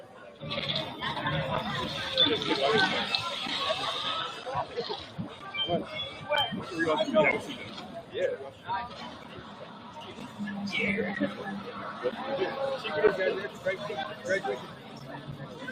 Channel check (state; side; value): identical; both; correlation 1.00